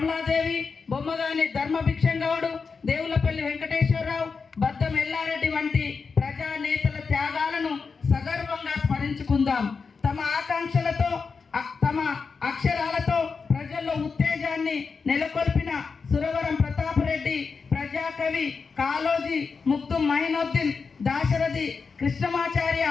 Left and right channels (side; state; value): right; quieter; 5.1 dB